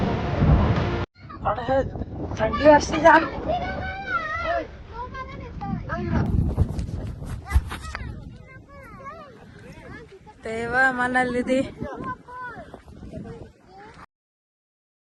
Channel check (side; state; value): both; identical; correlation 1.00